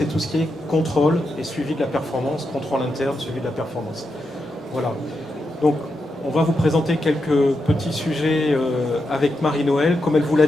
tout ce qui est contrôle et suivi de la performance, contrôle interne, suivi de la performance. Voilà. Donc, on va vous présenter quelques petits sujets avec Marie-Noëlle. Comme elle vous l'a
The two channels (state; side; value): normal; both; correlation 0.85